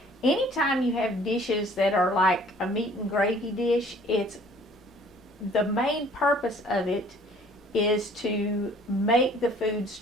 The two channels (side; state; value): both; normal; correlation 0.55